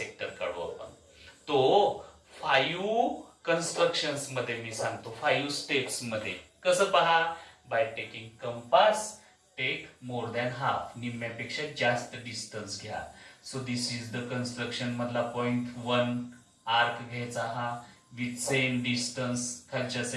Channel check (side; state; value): both; identical; correlation 1.00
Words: काढू आपण. तो 5 कन्स्ट्रक्शन्स मध्ये मी सांगतो 5 स्टेप्स मध्ये. कसं पहा? By taking compass take more than half. निम्म्यापेक्षा जास्त डिस्टन्स घ्या. So this is the construction मधला पॉइंट 1 आर्क घ्यायचा हा विथ सेम डिस्टन्स खालच्या